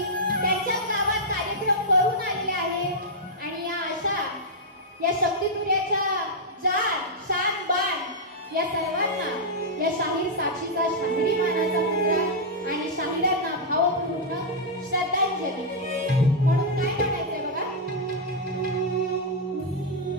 त्यांच्या गावात कार्यक्रम करून आलेले आहेत आणि या अशा या शक्तितुर्याच्या जान शान बाण या सर्वांना या शाहीर साक्षीचा शाहिरी मानाचा मुद्रा आणि शाहिरांना भावपूर्ण श्रद्धांजली म्हणून काय म्हणायचंय बघा.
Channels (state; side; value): normal; both; correlation -0.05